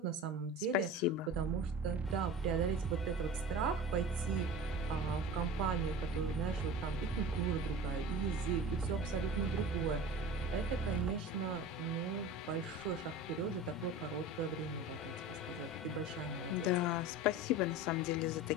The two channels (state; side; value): normal; both; correlation 0.35